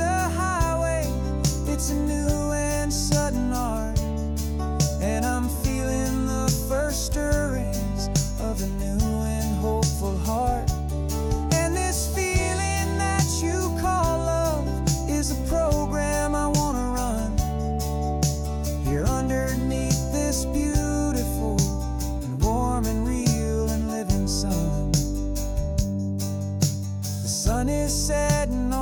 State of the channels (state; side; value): identical; both; correlation 1.00